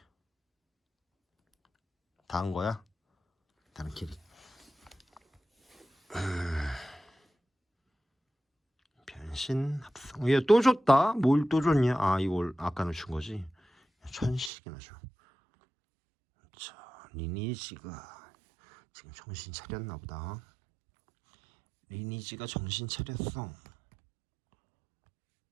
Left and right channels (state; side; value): drops out; left; at 14.5 s